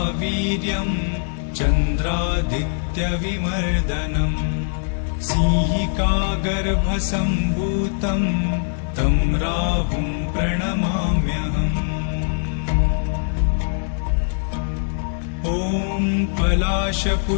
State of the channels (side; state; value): right; silent; digital silence